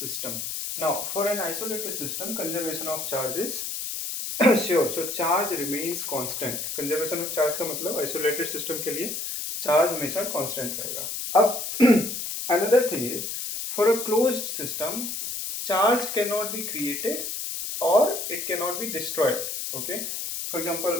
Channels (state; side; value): noise; left; hiss, 4 dB below the sound